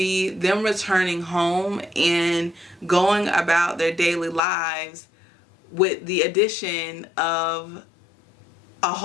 them returning home and going about their daily lives with the addition of a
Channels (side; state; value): right; drops out; at 4.4 s